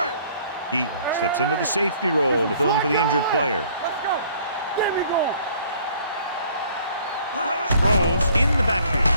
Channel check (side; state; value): both; inverted; correlation -0.58